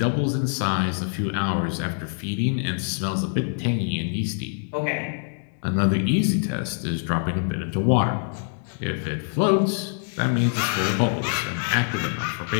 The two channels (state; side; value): silent; right; 58 dB below the other